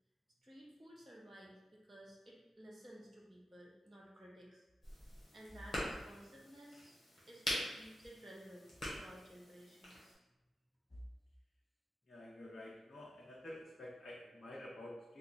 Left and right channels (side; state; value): both; normal; correlation 0.88